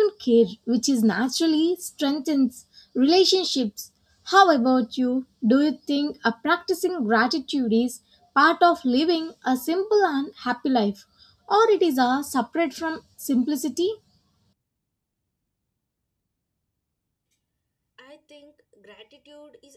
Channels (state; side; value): identical; both; correlation 1.00